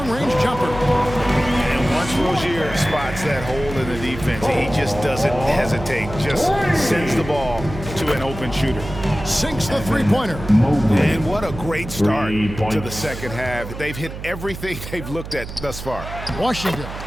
jumper. And Once Rozier spots that hole in the defense, he just doesn't hesitate. Just sends the ball to an open shooter. Sinks the three-pointer. And what a great start to the second half. They've hit everything they've looked at thus far. Washington.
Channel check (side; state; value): right; noise; hum, 10 dB below the sound